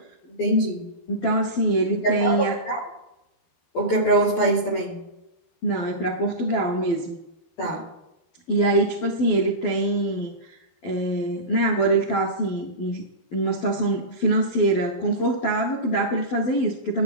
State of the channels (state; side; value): late; right; 12 ms